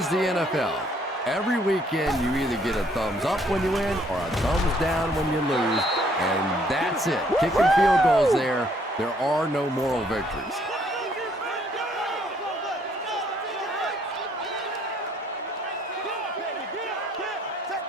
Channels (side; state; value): both; normal; correlation 0.65